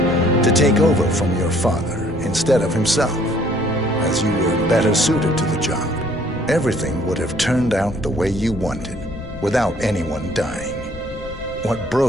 to take over from your father instead of himself, as you were better suited to the job. Everything would have turned out the way you wanted, without anyone dying. What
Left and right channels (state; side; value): noise; left; rumble, 17 dB below the sound